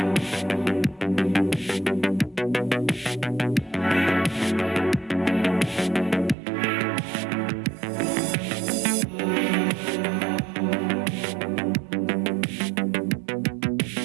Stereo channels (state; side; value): drops out; left; at 6.4 s